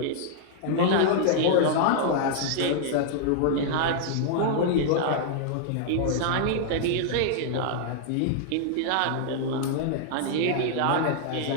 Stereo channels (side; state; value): both; different; correlation -0.01